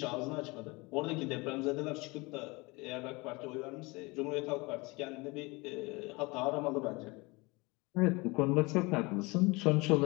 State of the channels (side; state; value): right; quieter; 25.3 dB